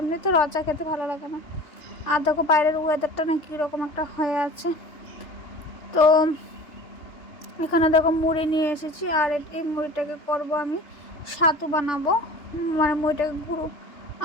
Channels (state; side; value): late; right; 3.4 ms